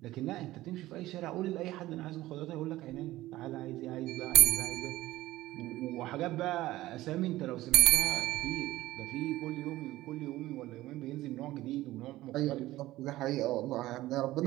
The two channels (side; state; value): left; quieter; 16.6 dB